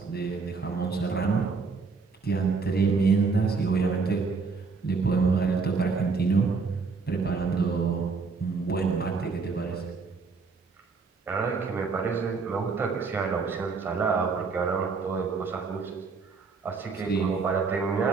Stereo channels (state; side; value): quieter; left; 4.7 dB